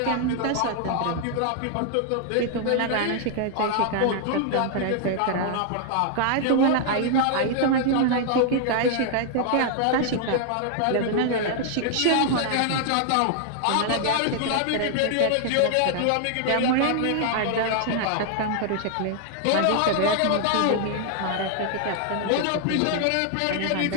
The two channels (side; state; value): both; different; correlation 0.00